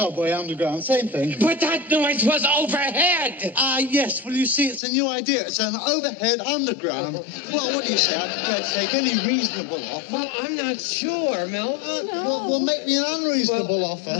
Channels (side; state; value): right; drops out; at 4.8 s